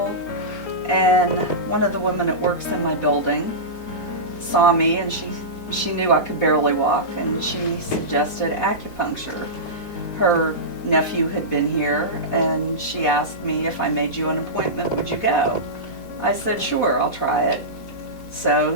and one of the women that works in my building saw me, and she knew I could barely walk, and she suggested acupuncture. Her nephew had been here, and she asked me if I made you an appointment, would you go? I said, sure, I'll try it. So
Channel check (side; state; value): right; late; 4.1 ms